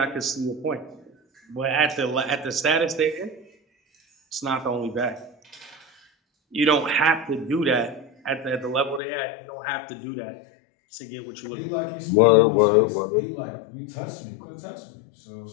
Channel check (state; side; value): drops out; right; at 9.0 s